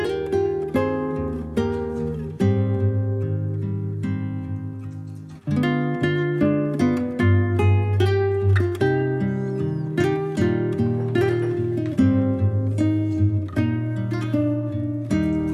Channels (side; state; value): both; identical; correlation 1.00